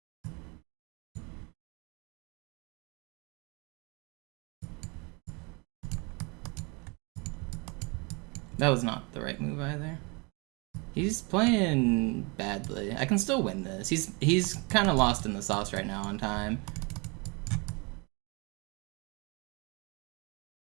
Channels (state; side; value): quieter; left; 30.0 dB